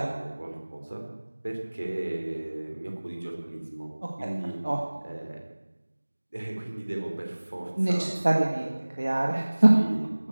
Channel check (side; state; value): both; inverted; correlation -1.00